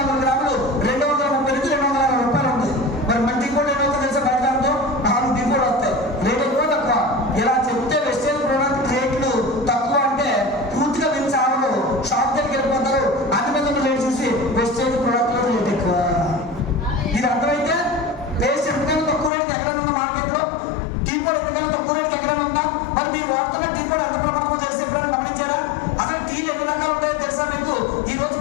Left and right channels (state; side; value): drops out; right; at 19.3 s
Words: గ్రాములు 230 నుంచి 260 రూపాయలు ఉంది. మరి మన టీ పొడి ఏమవుతుందో తెలుసా? బయటతో 4 టీ పొడి వస్తాయి. రేట్ ఎక్కువ తక్కువ ఇలా చెప్తే వెస్టేజ్ ప్రోడక్ట్ రేట్లు తక్కువ అంటే పూర్తిగా మీరు చావరు, షాప్ దగ్గరికి వెళ్ళిపోతారు. అన్ని మీద రేట్ చూసి వెస్టేజ్ ప్రోడక్ట్ లో రేట్ ఎక్కువ. ఇది అర్థమైతే పేస్ట్ ఎందుకైనా తక్కువ రేటుకి ఎక్కడైనా ఉందా మార్కెట్లో? టీ పొడి ఎందుకైనా తక్కువ రేటుకి ఎక్కడైనా ఉందా? మరి మీరు వాడుతున్న టీ పొడి ఎంత ప్రమాదమో తెలిసి ఎప్పుడైనా గమనించారా? అసలు టీలు ఎన్ని రకాలు ఉంటాయో తెలుసా మీకు? ఈ రోజు